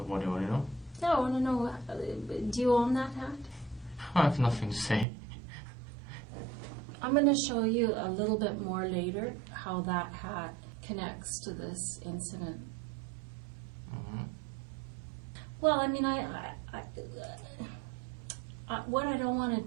do you want to know? Yeah, I want to know, do you own that hat? I have nothing to say. I'm going to show you a little bit more later how that hat connects to this incident. Well, I mean, what I don't want to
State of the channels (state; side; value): drops out; left; at 5.1 s